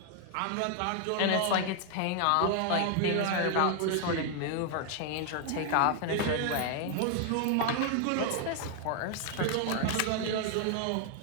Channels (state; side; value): different; both; correlation 0.00